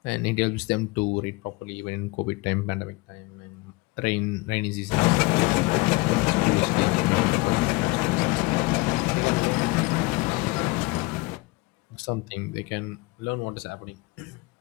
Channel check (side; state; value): right; quieter; 23.4 dB